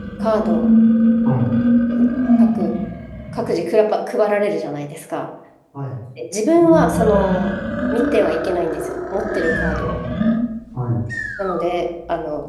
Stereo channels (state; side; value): identical; both; correlation 1.00